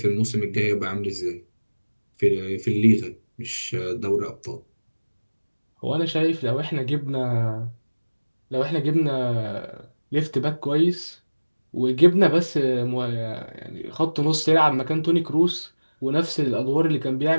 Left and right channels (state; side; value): inverted; both; correlation -1.00